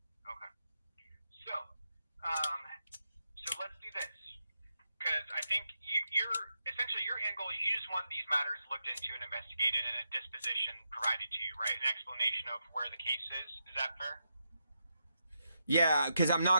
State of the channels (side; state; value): both; inverted; correlation -0.84